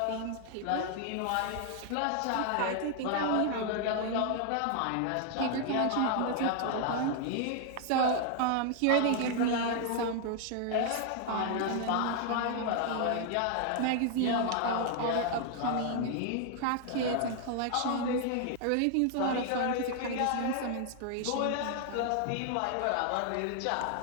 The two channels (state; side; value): different; both; correlation 0.00